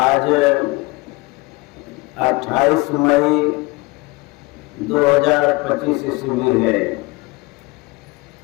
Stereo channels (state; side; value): quieter; right; 23.6 dB